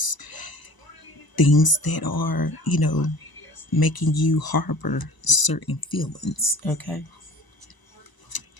things that are making you harbor certain feelings, okay.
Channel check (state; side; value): late; right; 1.0 ms